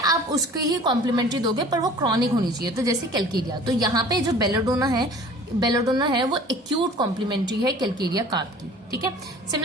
आप उसकी ही कॉम्प्लीमेंट्री दोगे पर वो क्रॉनिक होनी चाहिए। तो जैसे कैलकेरिया, तो यहाँ पे जो बेलाडोना है वो एक्यूट कॉम्प्लीमेंट्री है कैलकेरिया कार्प की, ठीक है।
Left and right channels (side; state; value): both; normal; correlation 0.47